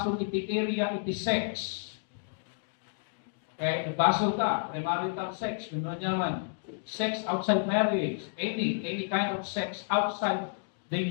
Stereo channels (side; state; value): right; silent; digital silence